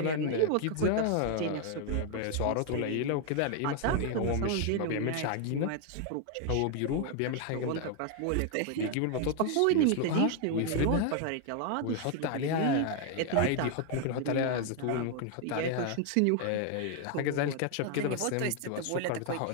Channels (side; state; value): both; different; correlation 0.00